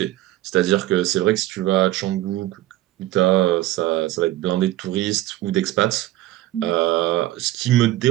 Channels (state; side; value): quieter; left; 15.5 dB